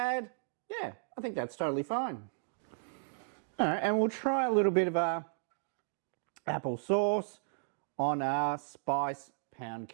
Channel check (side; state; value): left; silent; digital silence